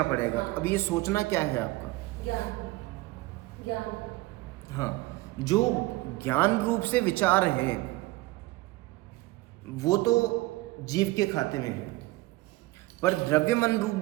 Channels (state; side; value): quieter; left; 19.9 dB